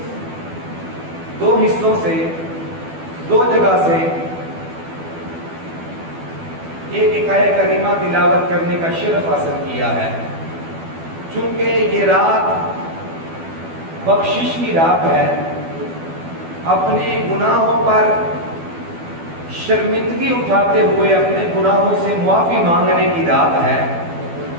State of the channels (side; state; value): left; late; 12 ms